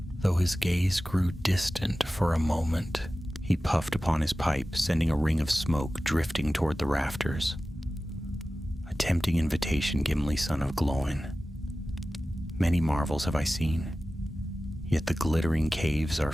though his gaze grew distant for a moment. He puffed upon his pipe, sending a ring of smoke drifting toward the rafters. "A tempting invitation, Gimli, son of Glóin. Many marvels have I seen, yet the glittering caves are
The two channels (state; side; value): normal; both; correlation 0.95